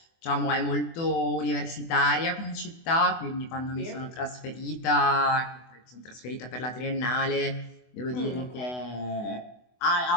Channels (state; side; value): late; right; 24 ms